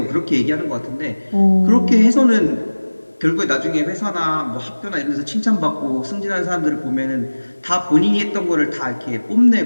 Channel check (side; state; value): both; inverted; correlation -1.00